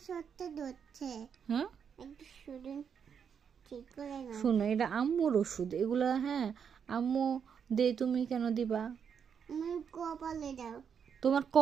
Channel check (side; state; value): left; quieter; 7.2 dB